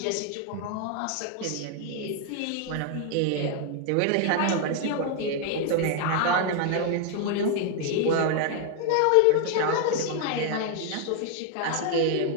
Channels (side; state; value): both; different; correlation 0.00